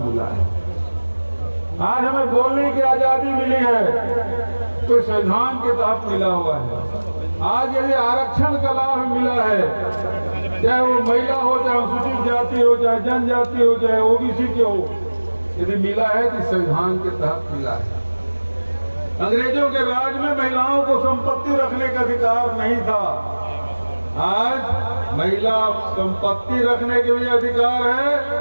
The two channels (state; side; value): inverted; both; correlation -1.00